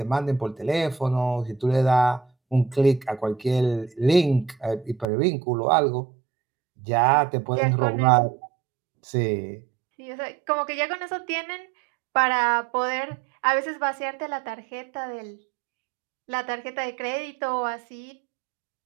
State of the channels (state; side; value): drops out; left; at 5.1 s